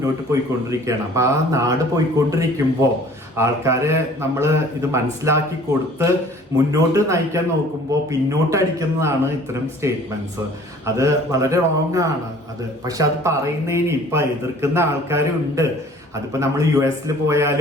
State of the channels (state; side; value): normal; both; correlation 0.51